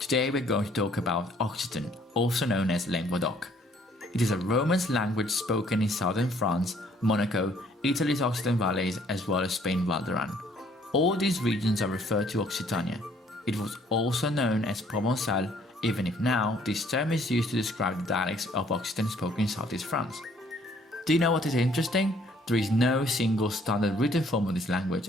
we're going to talk about Occitan, also known as Languedoc. It is a Romance language spoken in southern France, Monaco, Italy's Occitan Valleys, as well as Spain Val d'Aran. All these regions are referred to Occitania. It was also known as Provençal, even if now this term is used to describe the dialects of Occitan spoken in southeast France. Do you know what is interesting? There is no single standard written form of this language,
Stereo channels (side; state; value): both; normal; correlation 0.62